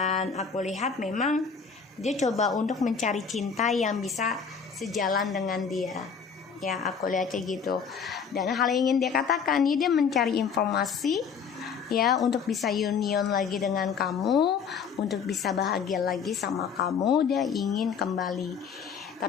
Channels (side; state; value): right; quieter; 6.3 dB